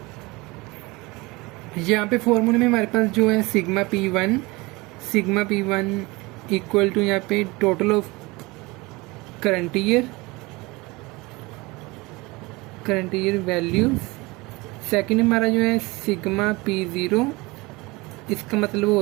यहाँ पे फॉर्मूले में हमारे पास जो है सिग्मा P1 इक्वल टू यहाँ पे total of current year values. Second हमारा जो है सिग्मा P0, इसका मतलब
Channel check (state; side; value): quieter; left; 23.4 dB